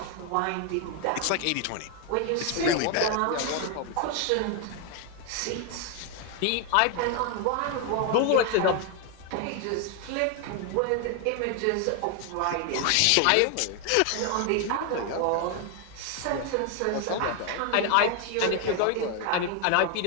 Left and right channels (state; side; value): different; both; correlation 0.01